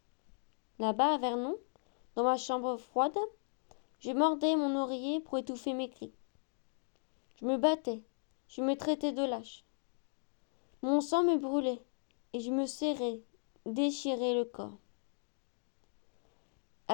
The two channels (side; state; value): right; silent; digital silence